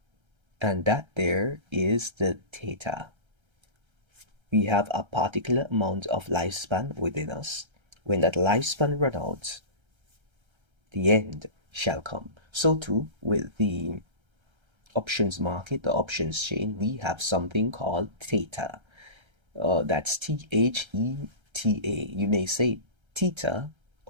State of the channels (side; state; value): left; late; 1.3 ms